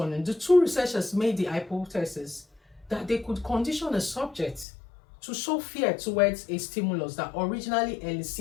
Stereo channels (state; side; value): drops out; right; at 4.7 s